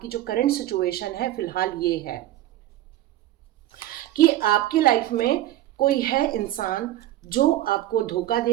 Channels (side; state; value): left; quieter; 14.2 dB